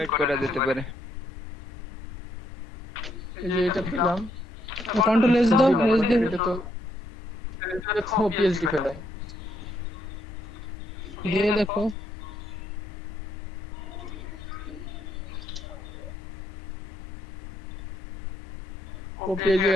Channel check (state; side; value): normal; both; correlation 0.74